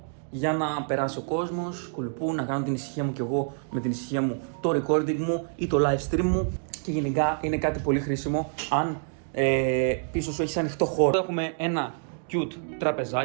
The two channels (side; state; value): left; silent; 60 dB below the other